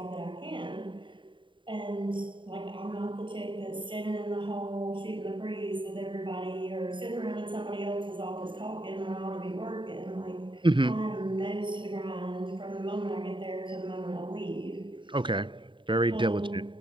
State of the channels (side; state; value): left; late; 0.24 ms